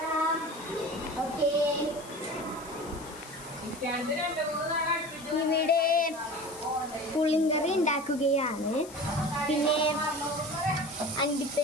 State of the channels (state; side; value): noise; left; hiss, 18 dB below the sound